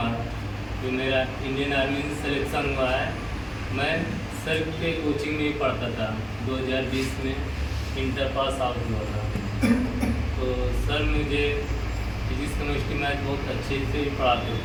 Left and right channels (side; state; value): both; identical; correlation 1.00